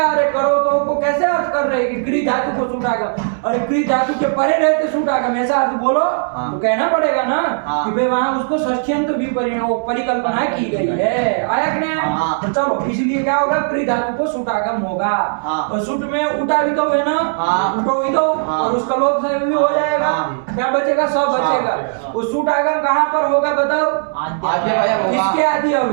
अरे करो तो को कैसे अर्थ कर रहे हैं कि क्री धातु को सूट आगम? अरे क्री धातु के परे रहते सूट आगम, ऐसा अर्थ बोलो। हाँ। तो कहना पड़ेगा ना हाँ। कि भाई वहां उसको षष्ठ्यंत भी परिकल्पना की गई है। आया कि नहीं आया? हाँ। तो चलो, इसलिए क्या होगा? क्री धातु को सूट आगम होगा। हाँ। और सूट में उठा भी तो है ना, हाँ। उठो भी तो, हाँ। और उसका लोप से भी हो जाएगा। हाँ। क्या बचेगा? सब बचेगा। हाँ। वो सूट आगम कहाँ पर होगा बताओ? आद्य अवयव होगा। किसके आदि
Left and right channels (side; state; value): left; silent; 68 dB below the other